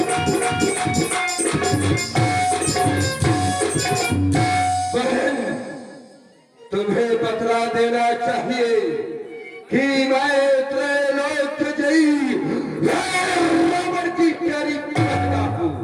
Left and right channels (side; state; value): both; identical; correlation 1.00